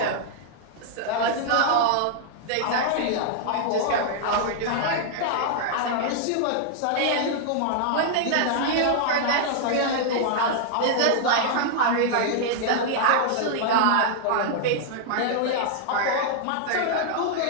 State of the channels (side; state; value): both; different; correlation -0.01